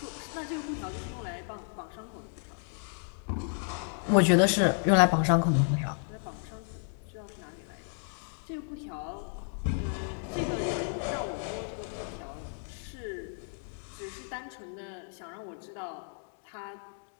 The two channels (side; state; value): right; silent; 56 dB below the other